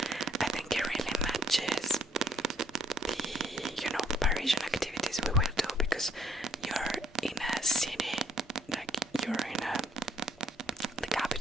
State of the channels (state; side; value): normal; both; correlation 0.65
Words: I think it really matches the, Parisian activities we will do, because you're in a city, like you're in the